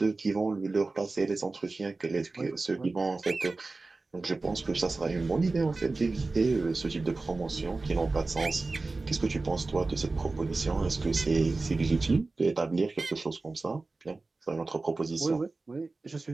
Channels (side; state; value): left; quieter; 3.5 dB